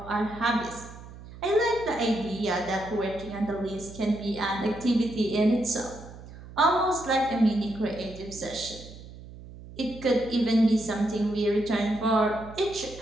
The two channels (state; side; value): noise; right; hum, 16 dB below the sound